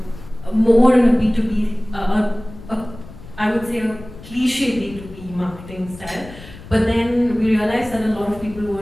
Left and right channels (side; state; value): left; noise; rumble, 17 dB below the sound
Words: more in a B2B, I would say a cliche B2B marketing style, but then we realized that a lot of people